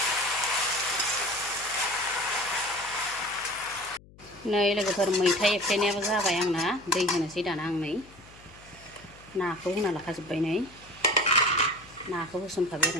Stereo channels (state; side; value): noise; left; hum, 23 dB below the sound